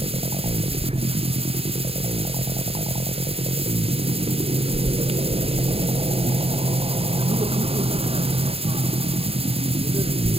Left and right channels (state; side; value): late; left; 0.28 ms